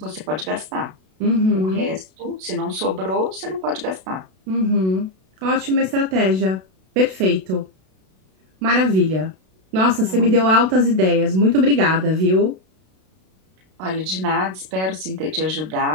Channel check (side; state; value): left; late; 32 ms